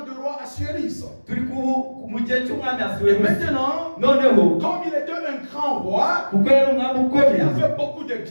du roi Assuérus. turi mu gihe cy'umwami Et asuwerusi maintenant, noneho comme il était un grand roi, kuko yari umwami il ukomeye a fait beaucoup de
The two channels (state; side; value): inverted; both; correlation -1.00